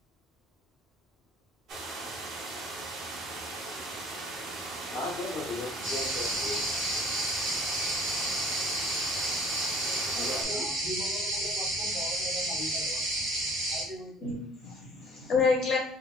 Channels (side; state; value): both; normal; correlation 0.50